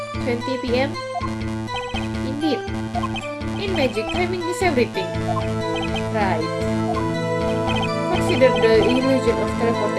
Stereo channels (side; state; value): both; identical; correlation 1.00